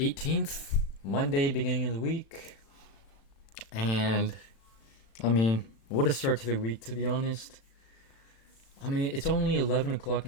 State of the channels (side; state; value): right; late; 36 ms